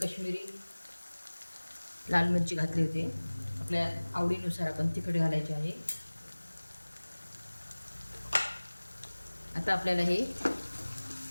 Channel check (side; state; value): both; inverted; correlation -1.00